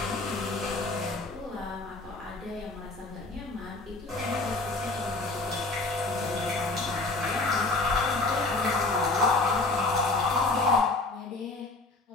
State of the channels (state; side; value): quieter; right; 3.2 dB